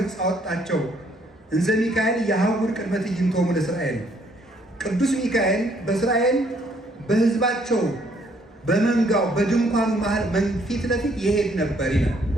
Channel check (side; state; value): both; normal; correlation 0.66